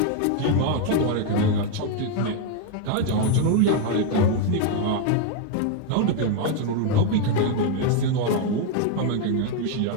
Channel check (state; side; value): different; both; correlation 0.00